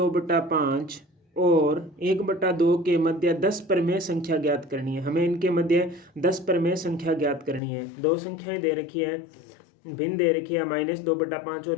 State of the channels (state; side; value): drops out; right; at 7.6 s